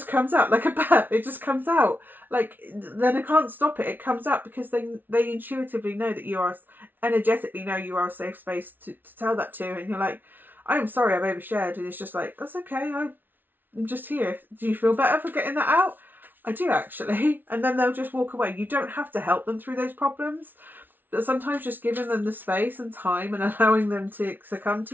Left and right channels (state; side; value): late; left; 0.090 ms